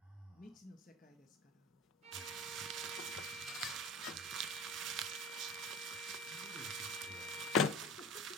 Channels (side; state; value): both; normal; correlation 0.33